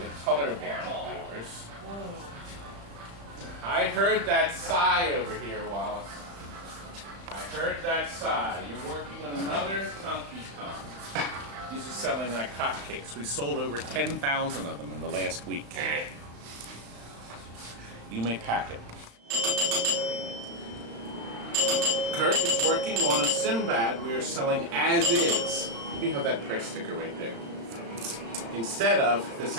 colorblind viewers. I heard that sigh over here, Wallace. I heard that sigh. You're working on another Donkey Kong. These are selling like hotcakes. We sold over 10,000 of them in the last week. You may pack it. Curt is working on a Sinbad we are selling as is. We have that price sticker right there. Instead of this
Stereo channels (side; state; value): left; late; 35 ms